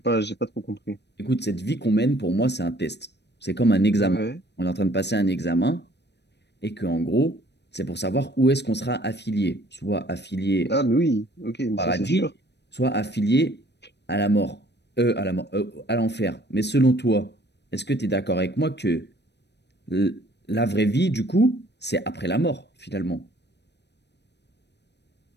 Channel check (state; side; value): late; right; 0.50 ms